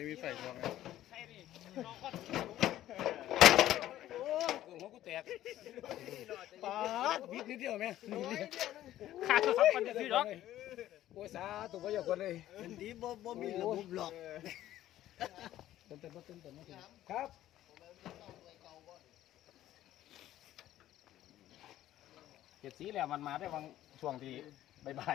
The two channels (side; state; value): right; quieter; 13.4 dB